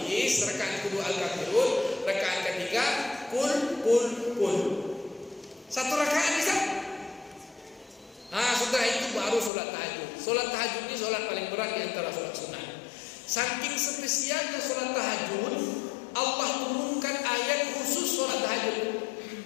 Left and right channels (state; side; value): drops out; right; at 9.5 s